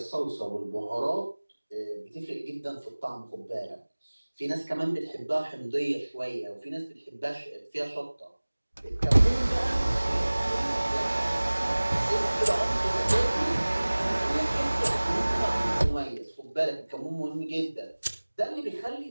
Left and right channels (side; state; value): both; inverted; correlation -1.00